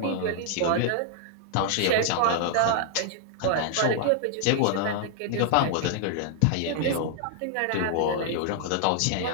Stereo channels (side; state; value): both; different; correlation -0.01